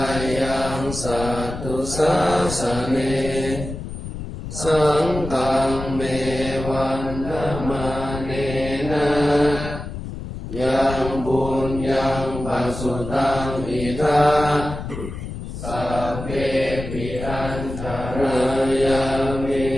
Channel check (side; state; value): left; noise; rumble, 8 dB below the sound